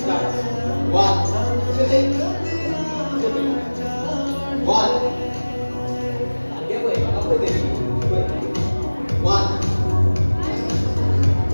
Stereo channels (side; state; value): both; inverted; correlation -1.00